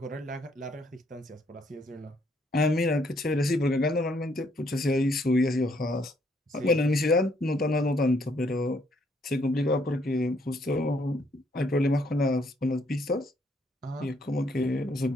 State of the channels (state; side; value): normal; both; correlation 0.69